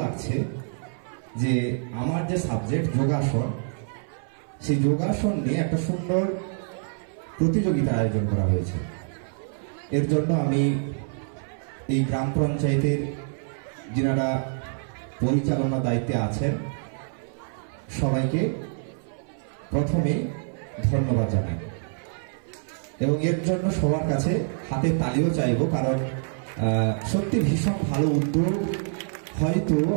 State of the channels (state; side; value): silent; left; 61 dB below the other